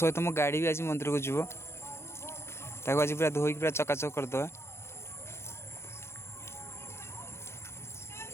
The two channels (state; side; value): late; right; 0.12 ms